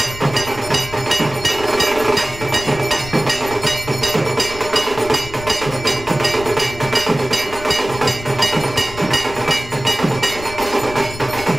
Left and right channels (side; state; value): left; noise; rumble, 14 dB below the sound